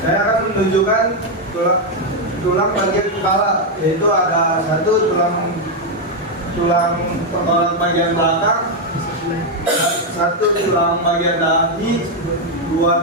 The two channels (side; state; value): both; normal; correlation 0.02